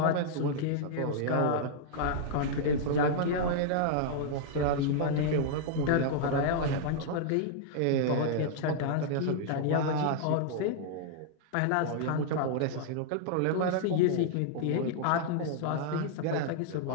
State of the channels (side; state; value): both; different; correlation -0.01